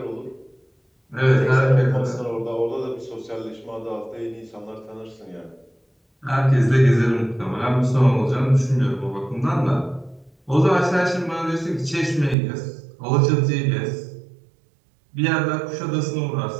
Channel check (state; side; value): drops out; left; at 12.4 s